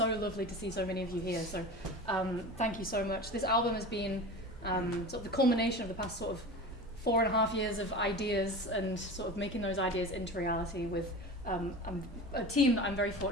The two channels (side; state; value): both; normal; correlation 0.32